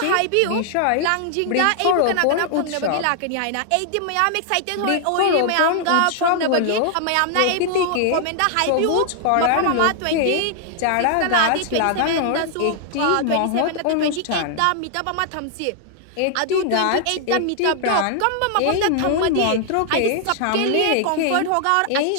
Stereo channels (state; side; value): different; both; correlation 0.00